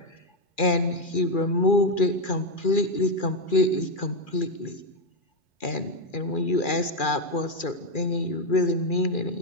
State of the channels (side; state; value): right; late; 2.4 ms